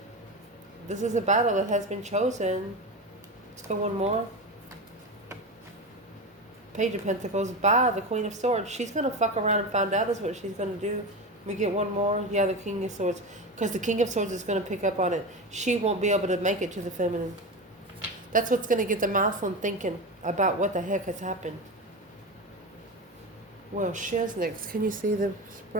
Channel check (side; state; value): both; normal; correlation 0.22